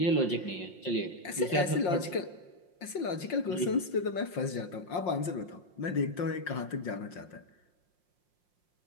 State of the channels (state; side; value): late; right; 5.6 ms